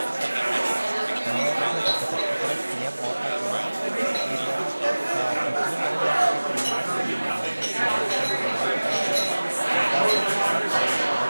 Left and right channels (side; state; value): both; inverted; correlation -1.00